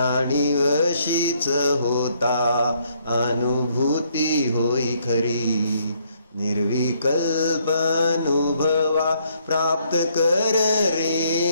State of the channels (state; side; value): inverted; both; correlation -0.69